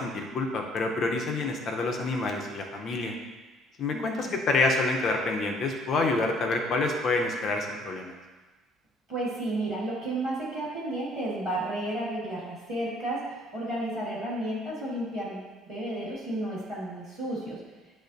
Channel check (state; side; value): normal; both; correlation 0.61